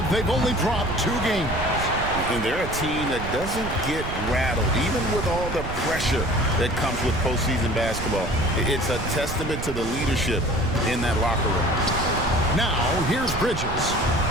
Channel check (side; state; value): right; noise; rumble, 7 dB below the sound